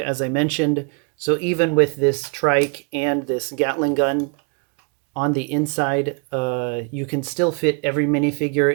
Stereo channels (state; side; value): quieter; left; 35.5 dB